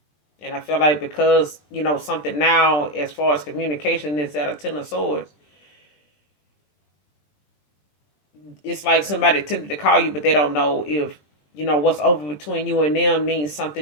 And I feel like because, something now as far as communication is at a ten of swords, it's like somebody tempted to call you, but they don't know if, what's over between you and them means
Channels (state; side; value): late; right; 20 ms